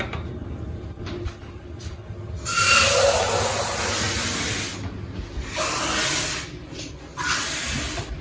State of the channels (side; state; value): both; identical; correlation 1.00